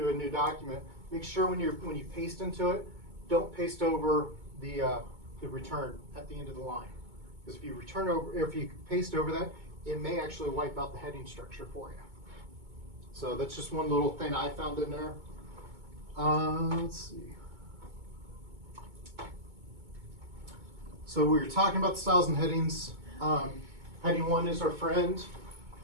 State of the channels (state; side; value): late; left; 2.2 ms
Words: a new document, make sure when you paste into it, don't paste over the return at the end of the line. Because if you paste over that, it may actually wipe out the heading structure for you. So that's just one little thing I found in there. Let's see. So we were talking about the styles and headings. Heading 1 is our friend.